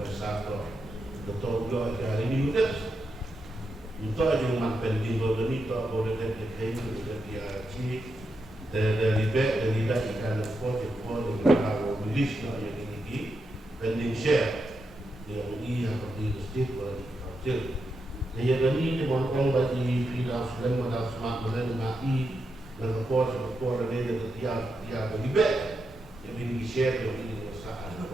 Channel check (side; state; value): both; normal; correlation 0.85